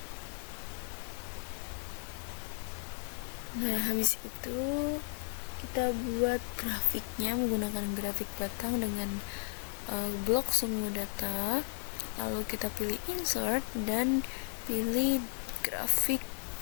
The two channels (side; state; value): right; silent; 55 dB below the other